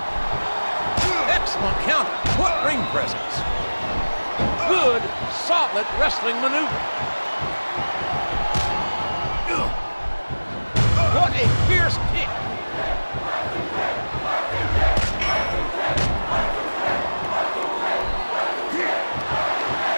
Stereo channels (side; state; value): both; inverted; correlation -1.00